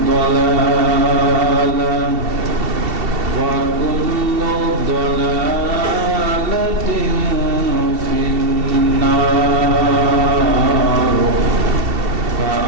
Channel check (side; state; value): left; late; 2.7 ms